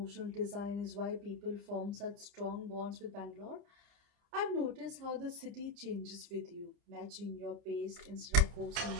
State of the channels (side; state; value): left; late; 29 ms